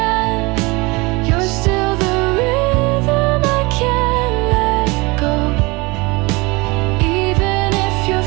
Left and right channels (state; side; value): quieter; left; 25.1 dB